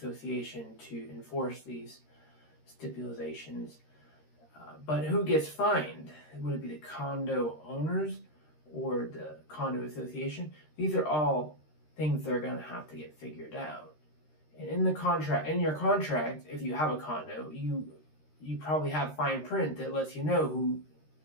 to enforce these stipulations. But who gets fined? Would it be the condo owners or the condo association? These are all things that are going to have to get figured out. And in your contract, if you have a condo, you probably have fine print that lets you know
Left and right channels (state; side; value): late; right; 13 ms